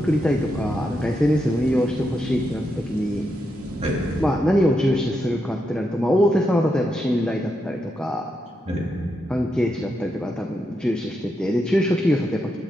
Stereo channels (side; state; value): both; normal; correlation 0.83